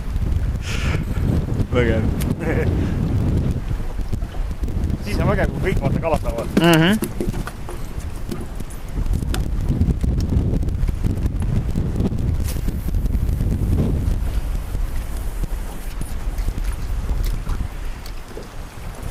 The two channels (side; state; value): both; identical; correlation 1.00